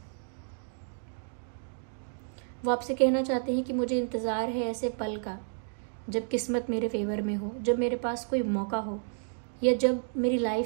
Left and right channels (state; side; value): silent; left; digital silence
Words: वो आपसे कहना चाहते हैं कि मुझे इंतजार है ऐसे पल का जब किस्मत मेरे फेवर में हो, जब मेरे पास कोई मौका हो, या जब मेरी लाइफ